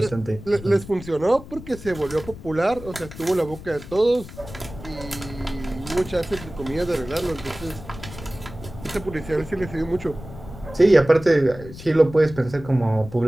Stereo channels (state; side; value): noise; left; rumble, 14 dB below the sound